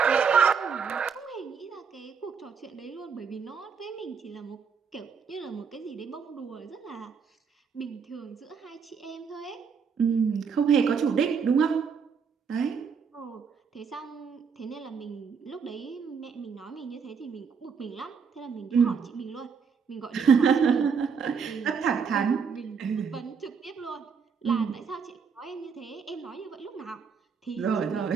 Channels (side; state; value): left; quieter; 6.1 dB